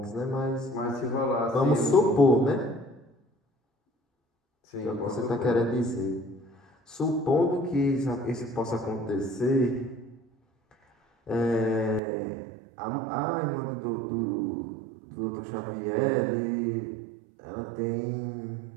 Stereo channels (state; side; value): drops out; left; at 12.0 s